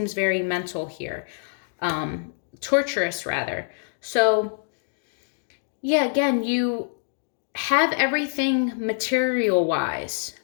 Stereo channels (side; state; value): right; silent; digital silence